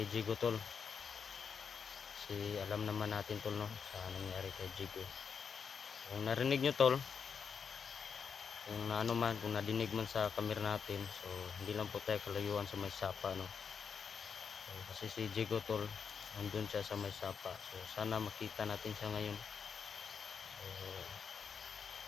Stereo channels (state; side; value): quieter; right; 6.4 dB